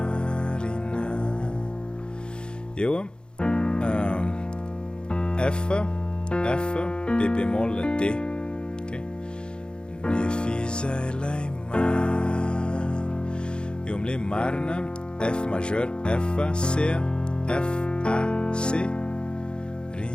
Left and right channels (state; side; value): late; right; 0.051 ms